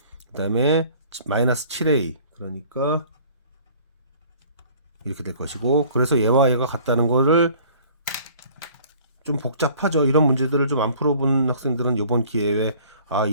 그 다음에 마이너스 7A. 그러니까 이렇게 될 것이고, 그래서 얘와 얘가 같다는 거를 좀 복잡하죠. 이런 문제들을 좀 안 풀어본 학생들은 이번 기회에 아,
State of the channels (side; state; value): both; inverted; correlation -0.52